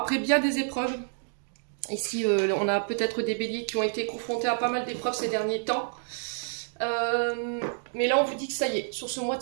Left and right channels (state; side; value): silent; left; digital silence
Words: bien des épreuves, ici on a peut-être des béliers qui ont été confrontés à pas mal d'épreuves ces derniers temps. Mais là on vous dit que ça y est, sur ce mois de